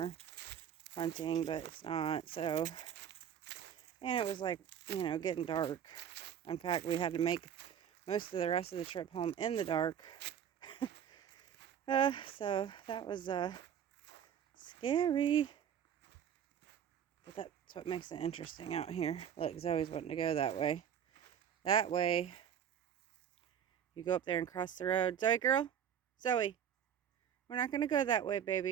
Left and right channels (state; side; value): quieter; left; 8.9 dB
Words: hunting, but it's not. So, and it was like, getting dark. In fact, we had to make most of the rest of the trip home in the dark. So that was scary. But that's what makes it interesting out here. Look, Zoe's wanting to go that way. That way. You go up there and cross the road. Zoe, girl. Zoe. We're not going to go that way,